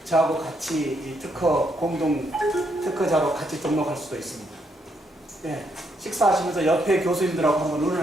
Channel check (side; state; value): both; normal; correlation 0.76